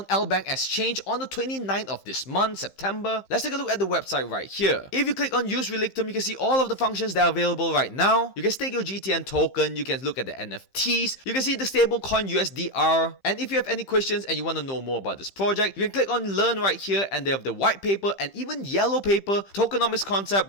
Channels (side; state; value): right; late; 15 ms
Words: LBank Exchange on the 29th of this month, September. Let's take a look at the website right here. If you click on Use Relictum, you can see all of the functions that are available right now. You can stake your GTN token, you can look at the NFTs, you can see the stablecoin USDR, and if you have any questions and you want to know more about this project, you can click on Learn right here, and they have the white paper and even yellow paper, Tokenomics